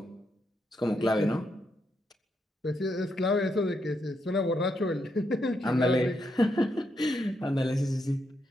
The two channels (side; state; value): both; normal; correlation 0.80